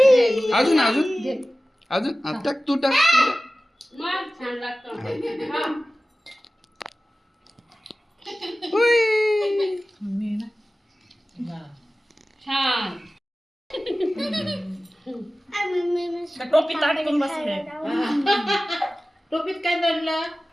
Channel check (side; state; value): both; normal; correlation 0.96